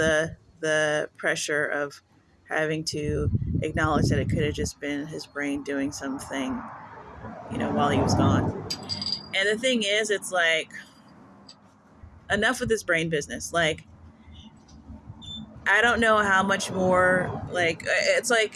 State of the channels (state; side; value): identical; both; correlation 1.00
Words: pressure of having to acknowledge that it could have just been his brain doing something, while he was gone. And the thing is, it's like, enough with this brain business. Like, I don't know how much more, like,